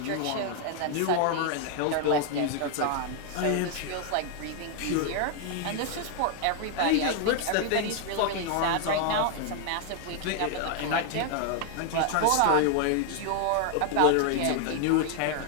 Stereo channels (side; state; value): both; different; correlation 0.00